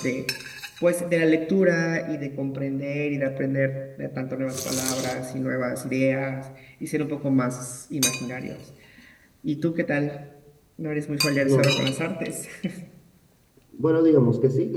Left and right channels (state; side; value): identical; both; correlation 1.00